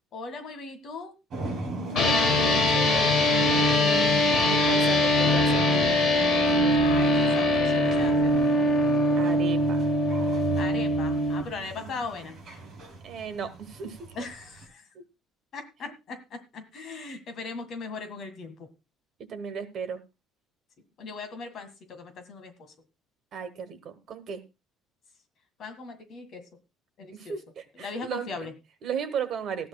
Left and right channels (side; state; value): both; normal; correlation 0.54